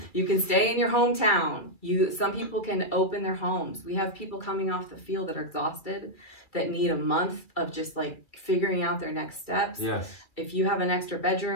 You can stay in your hometown. Some people can open their homes. We have people coming off the field that are exhausted, that need a month of just like figuring out their next steps. Yes. If you have an extra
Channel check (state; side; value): late; right; 2.3 ms